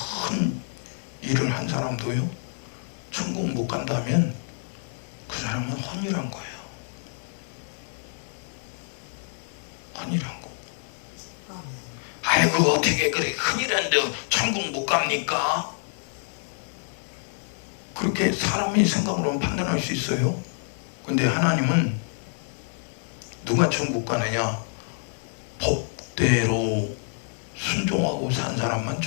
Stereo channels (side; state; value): right; silent; 60 dB below the other